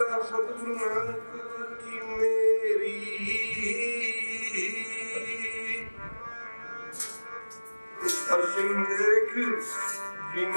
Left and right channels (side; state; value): both; inverted; correlation -1.00